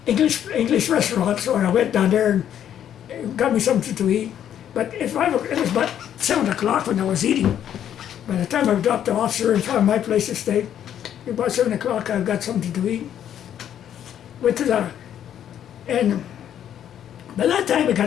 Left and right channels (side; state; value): right; quieter; 10.0 dB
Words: English restaurant, so I went down there and got me something to eat. But it was about 7 o'clock when I was eating. By the time I dropped the officer and found my place to stay, about 7 o'clock I got something to eat. Went to and by that time it